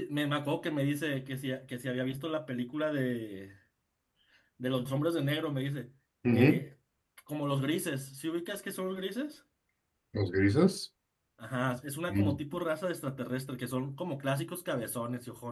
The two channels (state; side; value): identical; both; correlation 1.00